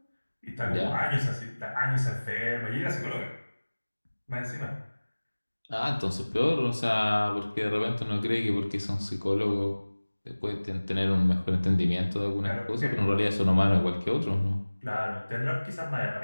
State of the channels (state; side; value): inverted; both; correlation -1.00